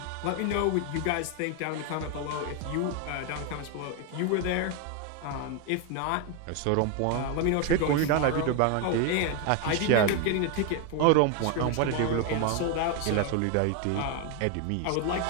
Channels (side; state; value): both; different; correlation 0.01